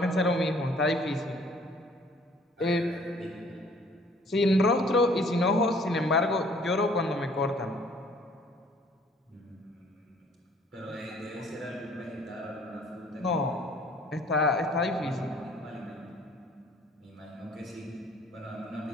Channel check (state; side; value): normal; both; correlation 0.57